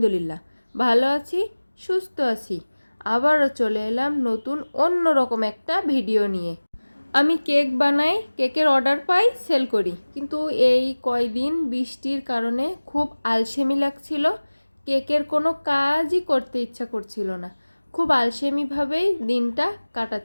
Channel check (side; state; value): both; inverted; correlation -1.00